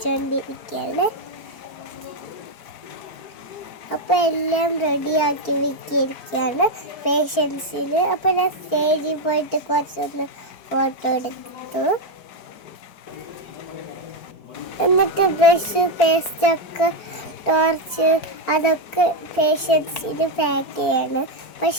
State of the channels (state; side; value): late; right; 4.4 ms